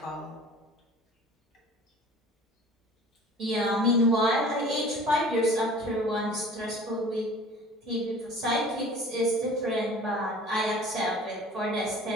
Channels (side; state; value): both; normal; correlation 0.45